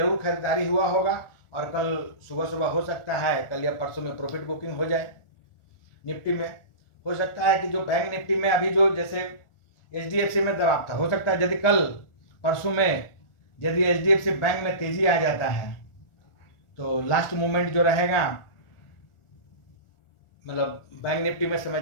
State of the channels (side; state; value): right; late; 1.4 ms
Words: खरीदारी हुआ होगा और कल सुबह सुबह हो सकता है कल या परसों में प्रॉफिट बुकिंग हो जाए निफ्टी में। हो सकता है कि जो बैंक निफ्टी में अभी जो जैसे HDFC में दबाव था, हो सकता है यदि कल परसों में यदि HDFC बैंक में तेजी आ जाता है तो लास्ट मोमेंट जो रहेगा, मतलब बैंक निफ्टी में